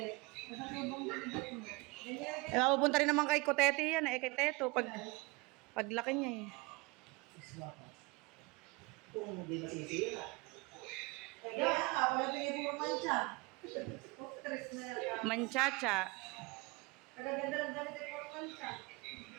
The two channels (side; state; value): left; quieter; 25.9 dB